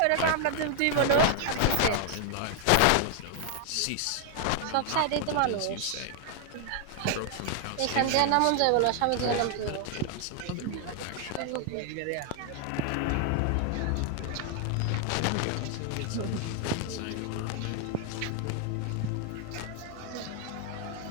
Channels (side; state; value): both; different; correlation 0.00